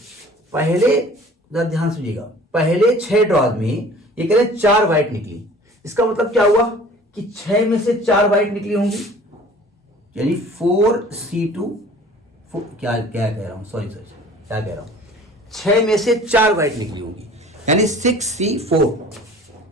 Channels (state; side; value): normal; both; correlation 0.47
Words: पहले ध्यान सुनिएगा, पहले 6 ड्रॉज में ये कह रहे 4 व्हाइट निकली। इसका मतलब क्या हुआ कि 6 में से 4 व्हाइट निकली होंगी, यानी 4C2 क्या कह रहा हूं, सॉरी क्या कह रहा हूं, 6 में से 4 व्हाइट निकली होंगी, यानी